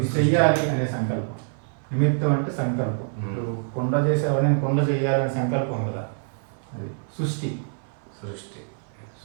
చెయ్యాలి అనే సంకల్పం. నిమిత్తం అంటే సంకల్పం. కొండ చేసేవాడు నేను కొండ చెయ్యాలనే సంకల్పం కదా. అది సృష్టి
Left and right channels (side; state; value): left; silent; 57 dB below the other